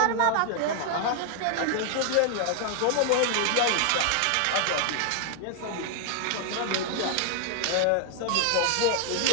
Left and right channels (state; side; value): different; both; correlation 0.00